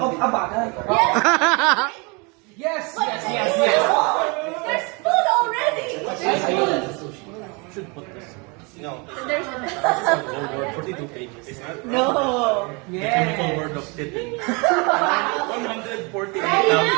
a bagay. Yes! There's food already. Should put this. No. There's Whole word, 42 pages. no. The chemical word of tipping. 148,000. Ready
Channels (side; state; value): left; quieter; 30.3 dB